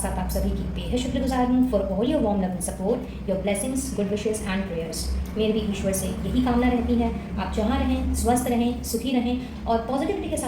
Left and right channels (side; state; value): both; identical; correlation 1.00